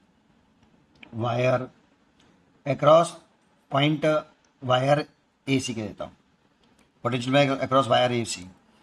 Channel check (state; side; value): identical; both; correlation 1.00